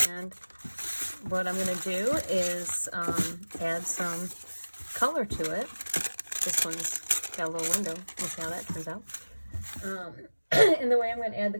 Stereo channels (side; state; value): both; inverted; correlation -1.00